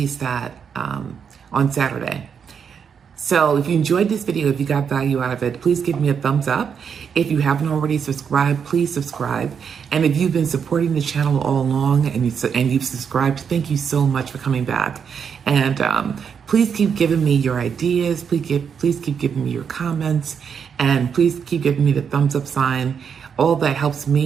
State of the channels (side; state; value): left; quieter; 7.0 dB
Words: that on Saturday. So if you enjoyed this video, if you got value out of it, please give me a thumbs up. If you haven't already subscribed, please subscribe. And if you've been supporting the channel all along and you've subscribed, thank you so much for coming back. And please keep giving me your ideas. Please keep giving me your comments. And please keep giving me the thumbs up sign. All that helps